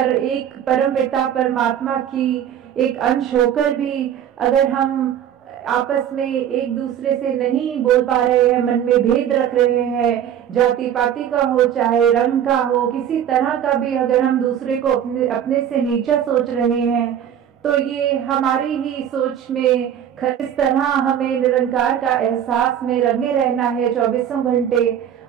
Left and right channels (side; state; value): left; quieter; 9.8 dB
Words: एक परमपिता परमात्मा की एक अंश होकर भी अगर हम आपस में एक दूसरे से नहीं बोल पा रहे हैं, मन में भेद रख रहे हैं, जाति पाति का हो चाहे रंग का हो, किसी तरह का भी अगर हम दूसरे को अपने से नीचा सोच रहे हैं, तो ये हमारी ही सोच में इस तरह हमें निरंकार का एहसास में रंगे रहना है 24 घंटे।